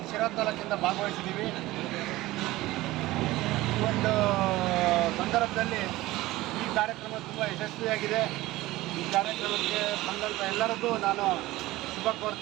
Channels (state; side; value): quieter; left; 18.0 dB